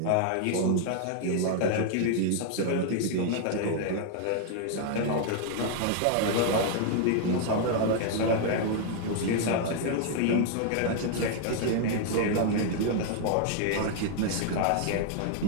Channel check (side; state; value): both; different; correlation 0.00